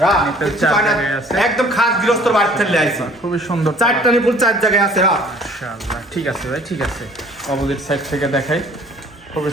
নিপল 4 জায়গায় আছে, একদম খাস গৃহস্থর বাড়ি থেকে আইছি, খুবই সুন্দর 4টা নিপুল 4 জায়গায় আছে। মাশাআল্লাহ। ঠিক আছে ভাই, ঠিক আছে। অপোজিট সাইড থেকে দেখাই, খুবই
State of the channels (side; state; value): both; normal; correlation 0.53